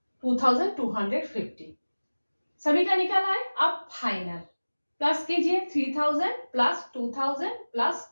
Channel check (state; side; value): inverted; both; correlation -1.00